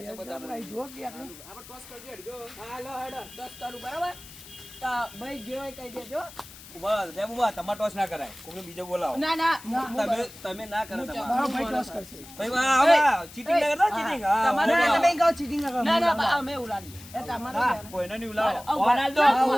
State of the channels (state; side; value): noise; left; hiss, 18 dB below the sound